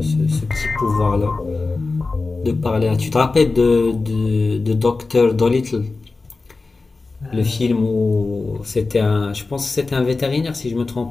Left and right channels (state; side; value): quieter; right; 3.8 dB